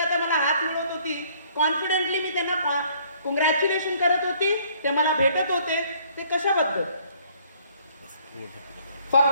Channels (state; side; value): inverted; both; correlation -0.61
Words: आता मला हात मिळवत होती, कॉन्फिडेंटली मी त्यांना कॉंग्रॅच्युलेशन करत होती, ते मला भेटत होते, ते कशाबद्दल,